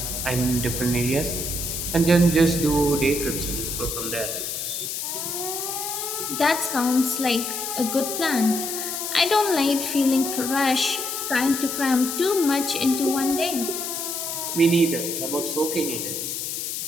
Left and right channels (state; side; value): noise; left; hiss, 4 dB below the sound